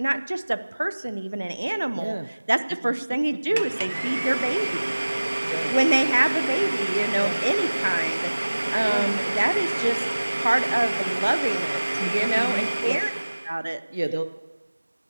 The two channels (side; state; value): both; inverted; correlation -1.00